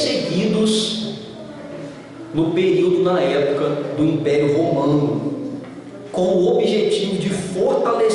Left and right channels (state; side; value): identical; both; correlation 1.00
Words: no período, na época do Império Romano, com o objetivo de